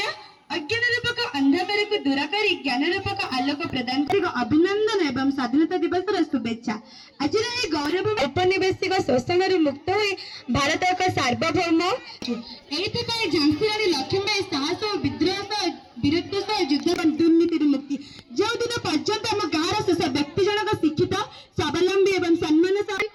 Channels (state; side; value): identical; both; correlation 1.00